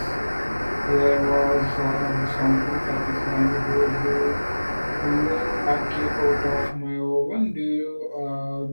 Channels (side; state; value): both; inverted; correlation -1.00